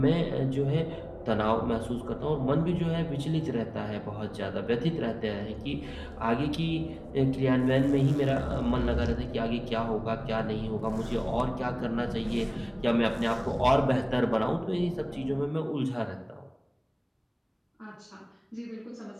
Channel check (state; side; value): identical; both; correlation 1.00